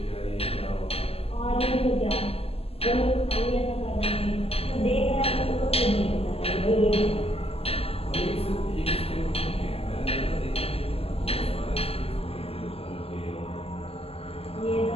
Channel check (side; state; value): right; late; 0.29 ms